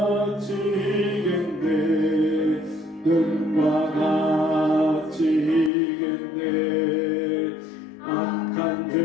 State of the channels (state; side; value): drops out; right; at 5.7 s